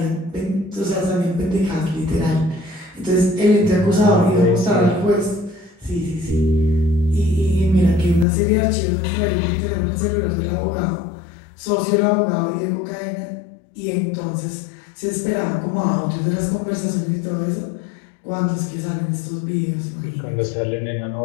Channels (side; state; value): right; drops out; at 8.2 s